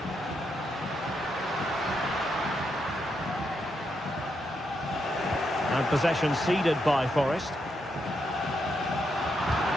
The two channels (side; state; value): both; normal; correlation 0.81